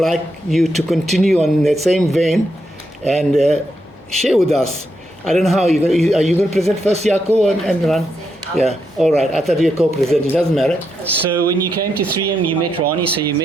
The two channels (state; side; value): normal; both; correlation 0.81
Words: you to continue on that same vein and share with us. I don't know how are you going to present first, Yako and Rani? Yeah, all right. I thought you were co-presenting. It doesn't matter. So when you came to 3M, you met Rani, so you